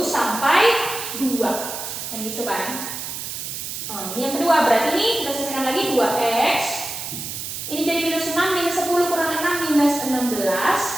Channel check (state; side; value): noise; right; hiss, 6 dB below the sound